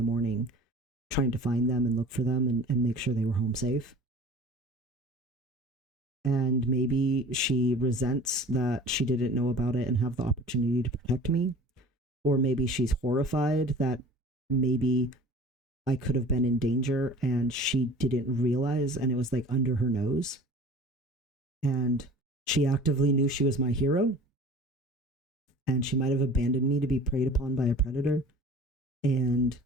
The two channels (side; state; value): both; normal; correlation 0.44